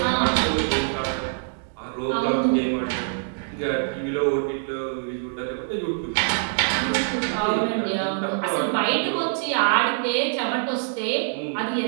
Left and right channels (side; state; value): left; silent; digital silence